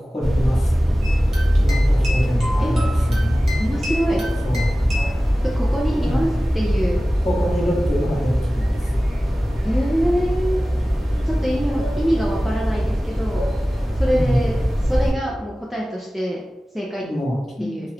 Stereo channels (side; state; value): both; normal; correlation 0.96